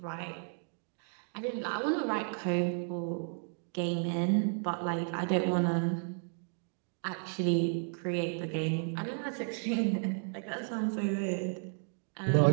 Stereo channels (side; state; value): left; silent; 56 dB below the other